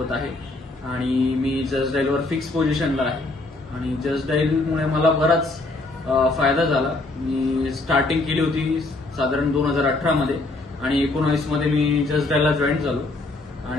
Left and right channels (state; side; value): quieter; right; 3.0 dB